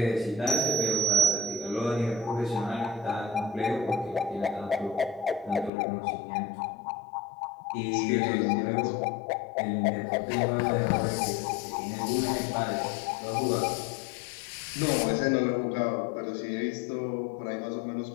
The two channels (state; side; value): drops out; right; at 5.7 s